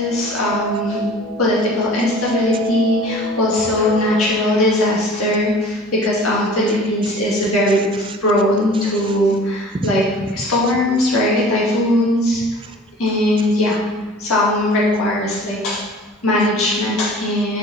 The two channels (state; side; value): normal; both; correlation 0.45